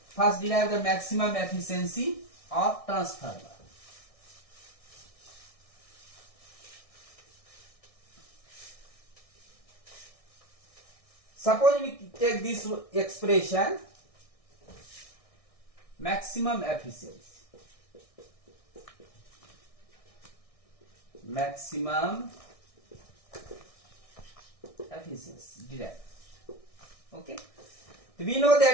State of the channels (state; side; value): late; right; 1.6 ms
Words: First derive the maximum efficiency of transformer. Suppose we take this expression, maximum efficiency. Maximum efficiency derived. Okay. We know